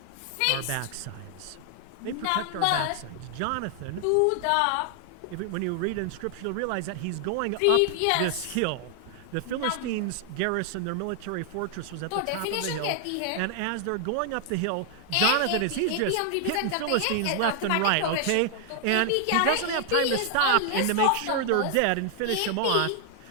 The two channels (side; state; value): both; different; correlation 0.00